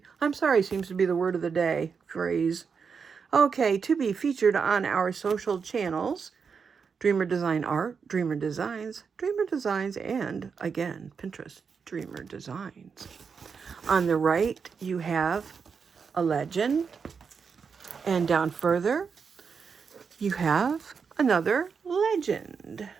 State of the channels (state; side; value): quieter; left; 5.9 dB